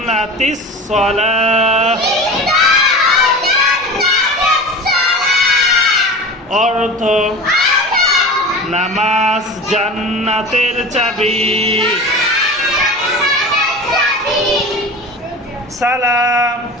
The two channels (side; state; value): both; normal; correlation 0.33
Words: সালাহ। অর্থ নামাজ জান্নাতের চাবি। সালাম